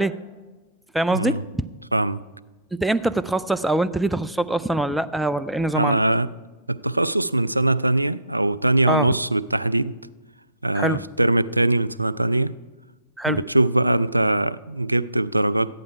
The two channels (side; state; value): both; inverted; correlation -0.46